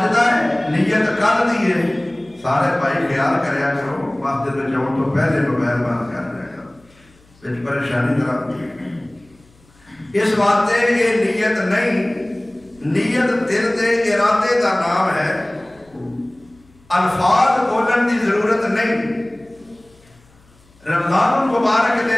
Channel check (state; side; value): noise; left; hum, 30 dB below the sound